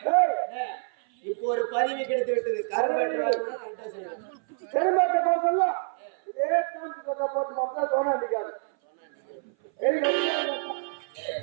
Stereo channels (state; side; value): silent; left; 57 dB below the other